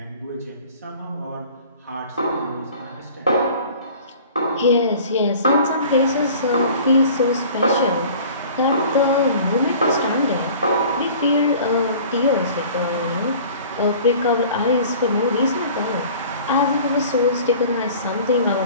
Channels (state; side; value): inverted; both; correlation -0.46